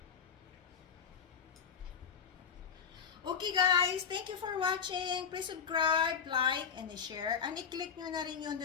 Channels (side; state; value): right; quieter; 6.9 dB